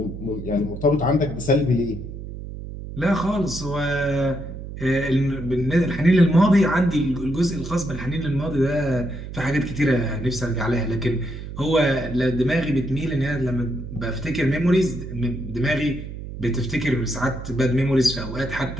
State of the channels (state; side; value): noise; right; hum, 10 dB below the sound